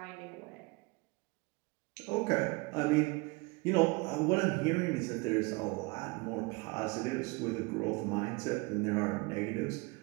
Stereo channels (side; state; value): left; quieter; 26.7 dB